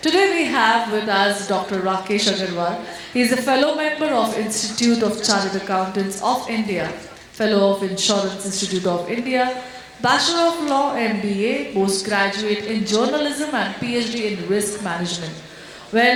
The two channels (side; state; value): both; identical; correlation 1.00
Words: Today we have with us Dr. Rakesh Agarwal. He is a fellow member of Institute of Chartered Accountants of India, fellow of Insurance Institute of India, Bachelor of Law MBA, postgraduate in journalism and PhD in risk management.